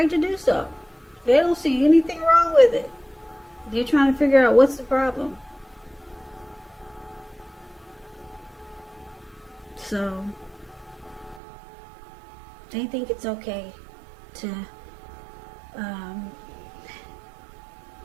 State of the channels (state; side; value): drops out; left; at 11.4 s